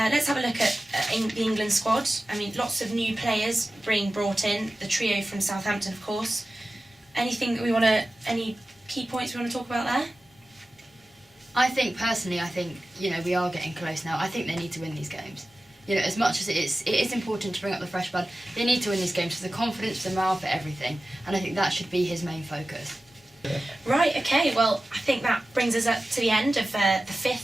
have a look at the England squad. Lots of new players being brought in. The trio from Southampton, of course. Any key points we want to talk about there? I think, we are getting close now. I think they need to win these games. You know, as much as it is important to bring up the fresh blood, they need to win these games for the confidence, for the morale, for everything. And I think that should be his main focus. Right, okay, well, I think that brings us up to the end of the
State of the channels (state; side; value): normal; both; correlation 0.95